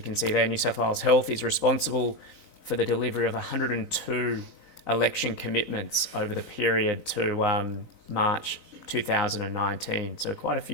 can see there, New South Wales Health is responsible for the delivery of 102 election commitments over the period to March 2019. So quite a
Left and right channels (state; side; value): late; left; 3.9 ms